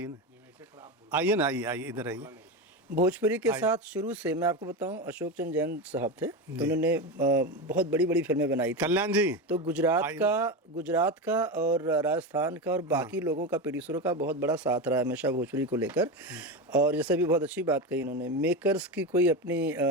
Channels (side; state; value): both; normal; correlation 0.18